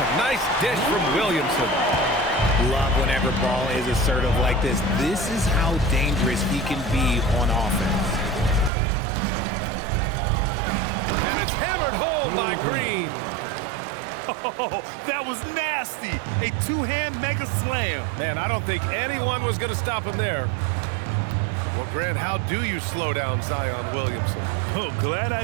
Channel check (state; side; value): drops out; left; at 8.7 s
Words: nice dish from Williamson. Love whenever Ball is assertive like this. This is how dangerous he can be on offense. And it's hammered home by Green. Oh, that was nasty. A two-hand mega slam. Man, I don't think anyone was going to stop him there. Well, Grant, how do you slow down Zion Williamson? Oh, glad I